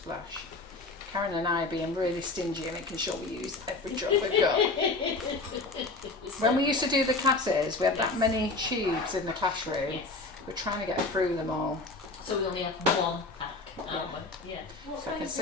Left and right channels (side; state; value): right; quieter; 3.4 dB